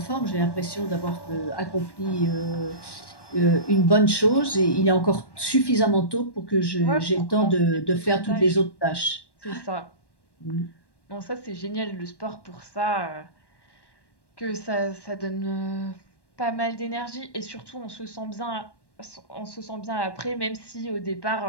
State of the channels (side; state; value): right; late; 1.1 ms